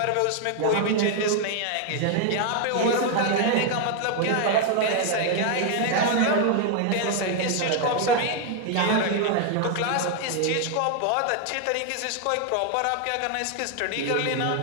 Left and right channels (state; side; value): different; both; correlation 0.00